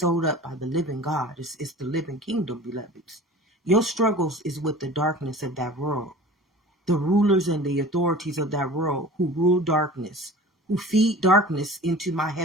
up by the living God. It's the living kingdom, beloveds. Your struggles is with the darkness of that world. The rulers and the authorities of that world who rule darkness, who feed darkness into my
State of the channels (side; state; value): both; normal; correlation 0.40